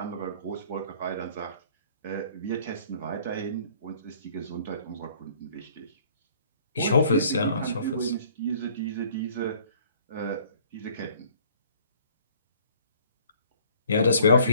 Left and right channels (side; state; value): both; inverted; correlation -0.57